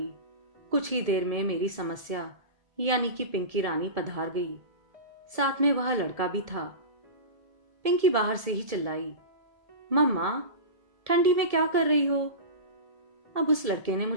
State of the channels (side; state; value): left; late; 1.7 ms